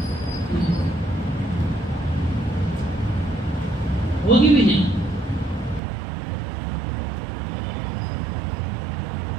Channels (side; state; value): left; drops out; at 5.8 s